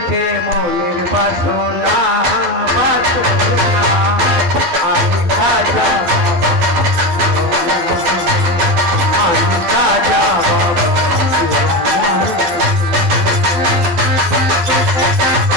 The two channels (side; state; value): left; late; 12 ms